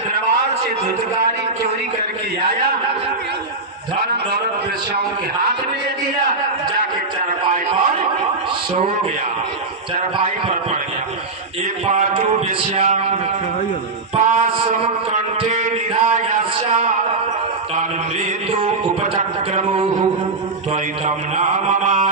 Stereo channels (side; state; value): left; quieter; 3.6 dB